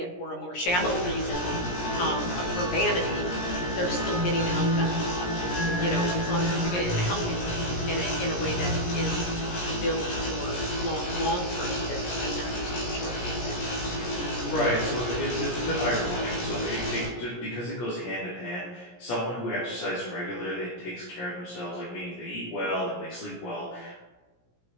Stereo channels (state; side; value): late; right; 17 ms